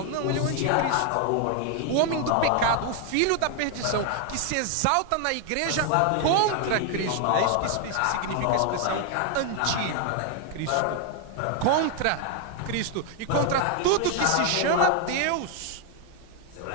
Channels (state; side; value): different; both; correlation 0.00